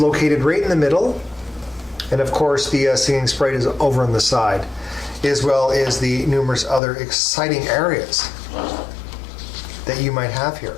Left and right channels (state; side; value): drops out; right; at 6.8 s